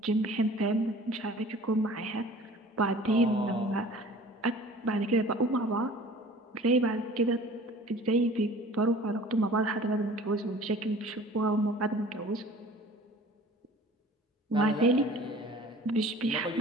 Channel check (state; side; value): normal; both; correlation 0.46